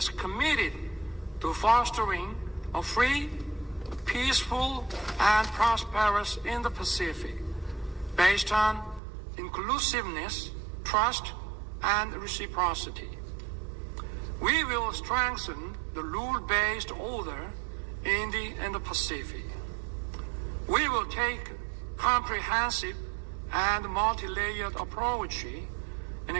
committed to fostering a free, peaceful, and prosperous Indo-Pacific based on inclusiveness, trust, and reciprocity. We will strengthen the rule-based order in the Indo-Pacific. We will take comprehensive and multi-layered approach in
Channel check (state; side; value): drops out; left; at 9.0 s